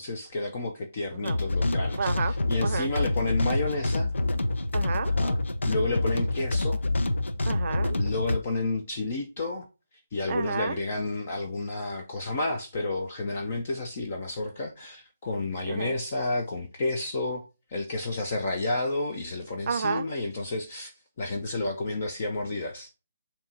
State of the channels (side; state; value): both; inverted; correlation -0.84